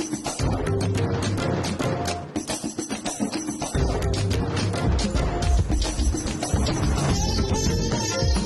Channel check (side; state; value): both; identical; correlation 1.00